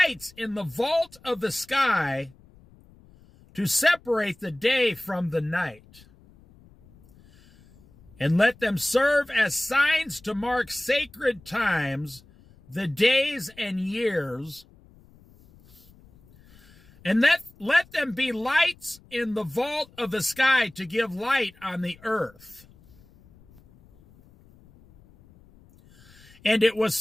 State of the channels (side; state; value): left; noise; rumble, 26 dB below the sound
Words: in the vault of the sky to separate the day from the night. And let them serve as signs to mark sacred times, the days and years. And let them be lights in the vault of the sky to give light on the earth." And it was